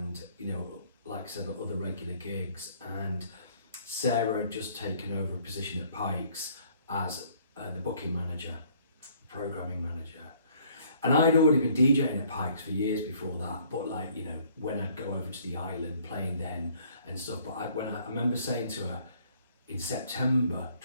you know, like I said, other regular gigs. And Sarah had just taken over a position at Pikes as the booking manager, programming manager, and I'd already been DJing at Pikes for years before that. But like, you know, when I'd go over to the island playing then and stuff. But I remember saying to her in September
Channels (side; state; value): both; inverted; correlation -0.60